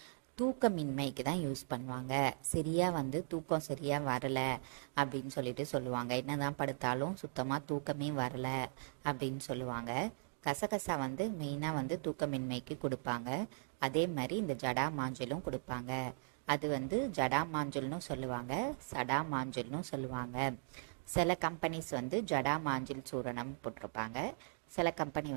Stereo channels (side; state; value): left; silent; digital silence